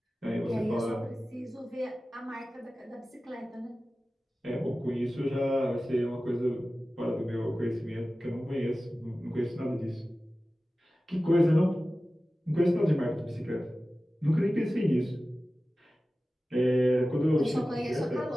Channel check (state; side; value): normal; both; correlation 0.96